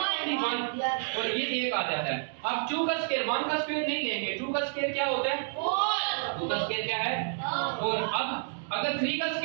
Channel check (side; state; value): left; silent; digital silence